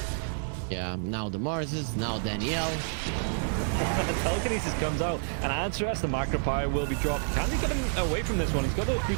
Yeah, now the Marses, now Danielle. Telekinesis comes out, and Answer's the macro pyre will be dropped. Can they get him away from this one? He's got those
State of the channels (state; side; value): silent; left; 59 dB below the other